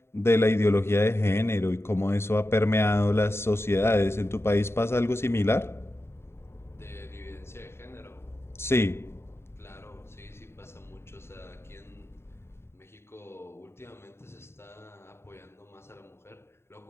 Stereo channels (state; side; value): late; right; 0.12 ms